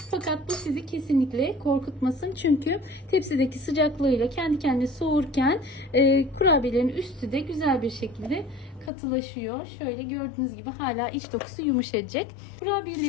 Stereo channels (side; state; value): right; drops out; at 8.9 s